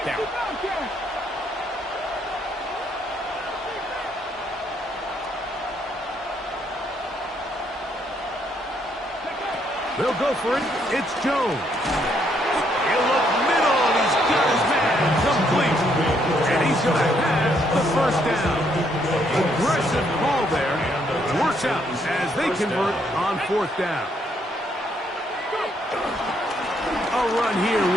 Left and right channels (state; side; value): normal; both; correlation 0.72